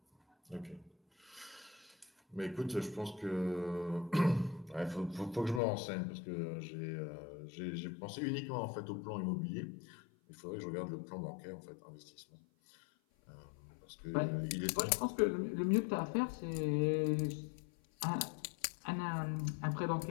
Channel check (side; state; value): right; drops out; at 5.6 s